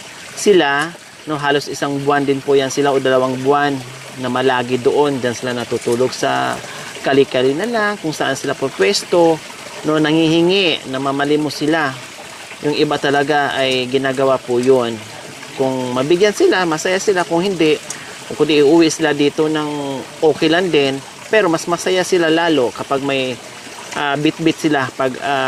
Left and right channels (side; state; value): both; identical; correlation 1.00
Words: sila, no, halos isang buwan din po yan sila o 2 buwan na malagi doon, dyan sila natutulog sa kali-kali na lang, kung saan sila po pwesto, no, nangihingi, namamalimos sila. Yung iba talaga ay ginagawa po yun. Kung mabigyan sila, masaya sila. Kung hindi, kung di iuwi sila dito ng okay lang din, pero mas masaya sila lalo kapag may bit-bit sila pag